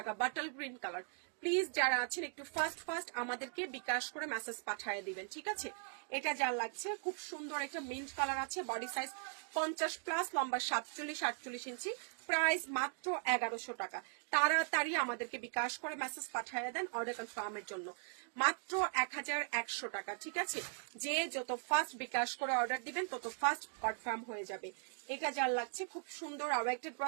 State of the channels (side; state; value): left; silent; 52 dB below the other